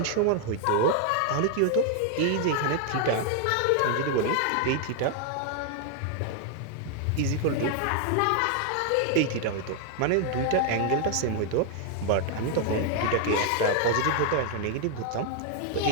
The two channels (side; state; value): both; different; correlation 0.00